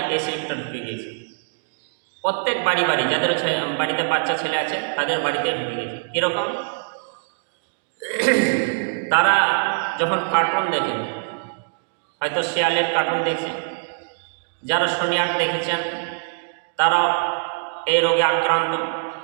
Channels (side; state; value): left; silent; digital silence